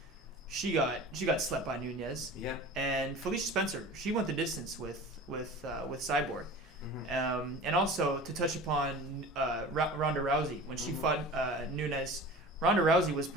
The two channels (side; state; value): both; normal; correlation 0.38